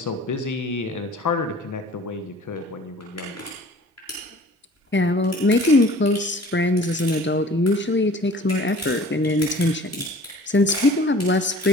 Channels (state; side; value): normal; both; correlation 0.48